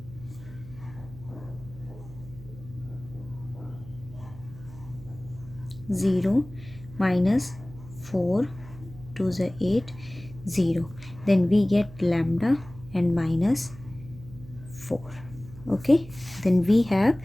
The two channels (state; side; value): noise; right; hum, 17 dB below the sound